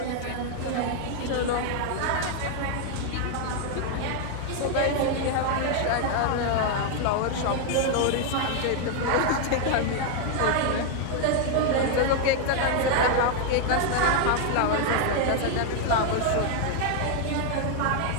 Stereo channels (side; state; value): both; different; correlation 0.00